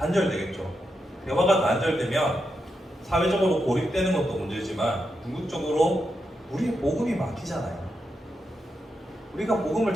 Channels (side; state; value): both; normal; correlation 0.85